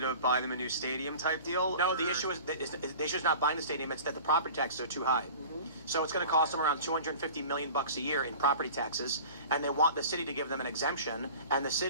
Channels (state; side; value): inverted; both; correlation -0.41